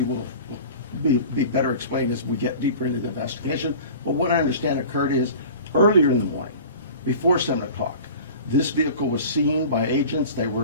will be better explained as we get deeper into the investigation, but what I understand occurred is earlier in the morning, before 7 o'clock, this vehicle was seen by agents.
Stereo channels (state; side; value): inverted; both; correlation -0.39